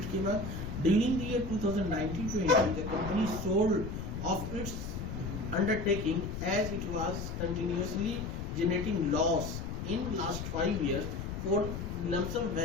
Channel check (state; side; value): noise; left; rumble, 6 dB below the sound